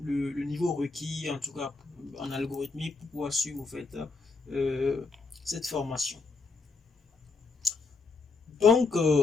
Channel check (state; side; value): quieter; right; 4.1 dB